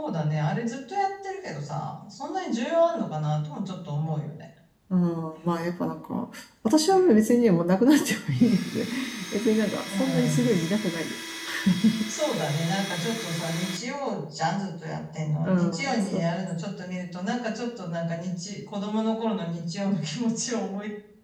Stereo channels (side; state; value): both; identical; correlation 1.00